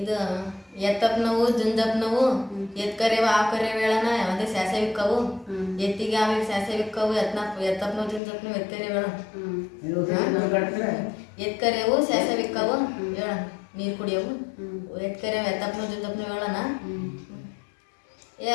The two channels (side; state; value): right; drops out; at 8.2 s